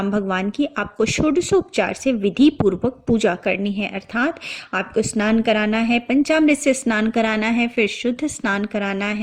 भगवान की आपको षोडशोपचार से विधि पूर्वक पूजा करनी है, अर्थात आपको स्नान कराना है, पंचामृत से स्नान कराना है, फिर शुद्ध स्नान कराना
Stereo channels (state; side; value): identical; both; correlation 1.00